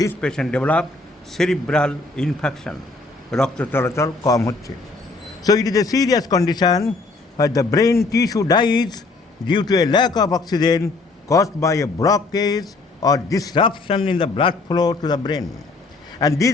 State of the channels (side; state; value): right; quieter; 3.6 dB